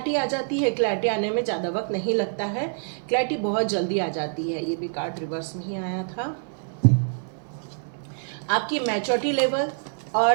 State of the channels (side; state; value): left; silent; 57 dB below the other